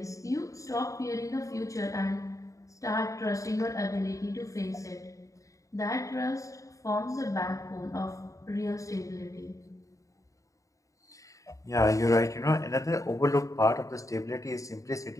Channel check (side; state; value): right; late; 0.16 ms